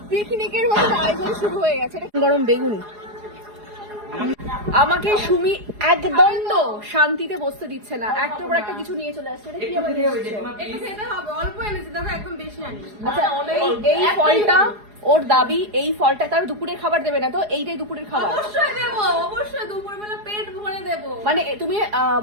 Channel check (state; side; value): late; left; 4.8 ms